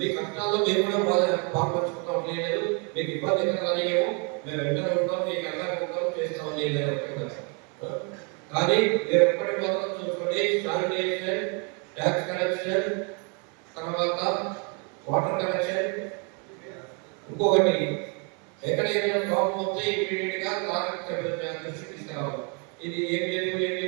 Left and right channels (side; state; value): left; quieter; 35.5 dB